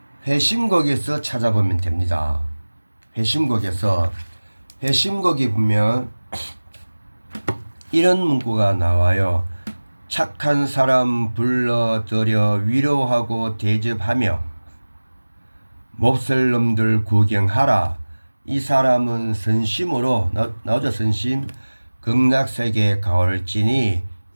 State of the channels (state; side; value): inverted; both; correlation -1.00